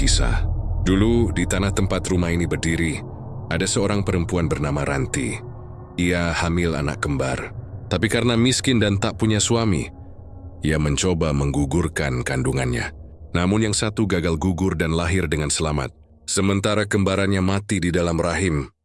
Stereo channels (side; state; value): both; identical; correlation 1.00